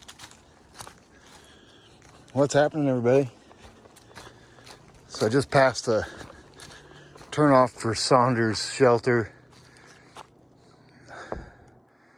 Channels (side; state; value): both; identical; correlation 1.00